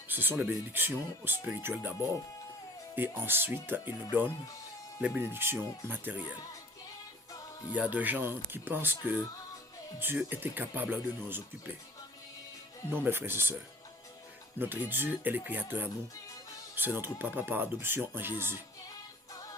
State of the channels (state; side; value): normal; both; correlation 0.49